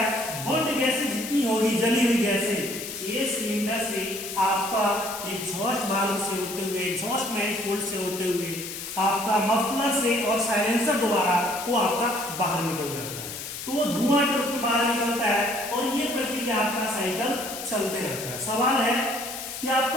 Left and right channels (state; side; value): noise; left; hiss, 8 dB below the sound